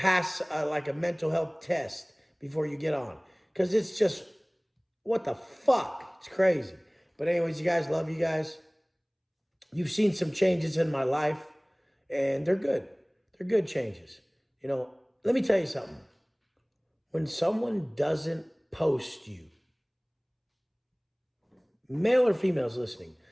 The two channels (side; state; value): both; identical; correlation 1.00